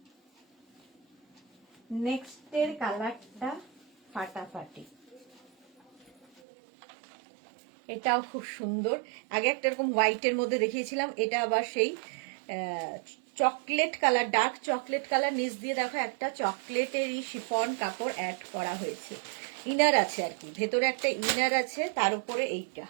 নেক্সটের কালারটা ফাটাফাটি, এটাও খুব সুন্দর। আগে একটা এরকম হোয়াইটের মধ্যে দেখিয়েছিলাম, এটা আবার সেই chocolate colour, dark chocolate colour, নিচ দিয়ে দেখো একটা চকলেটেরই শিফন কাপড় অ্যাড করা হয়েছে, ইনার আছে আর কি, ভেতরে একটা ইনার আছে, তার উপরে এইটা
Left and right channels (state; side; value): drops out; left; at 6.4 s